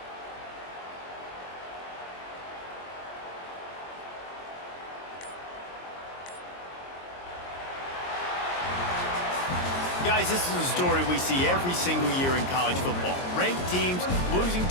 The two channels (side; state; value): right; late; 22 ms